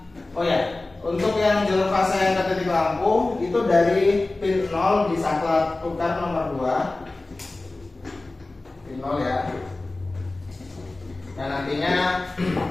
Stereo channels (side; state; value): right; quieter; 3.1 dB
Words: oh ya, untuk yang jalur fasa yang ke titik lampu itu dari pin 0 disangkut tukar nomor 2, pin 0 ya. Dan nantinya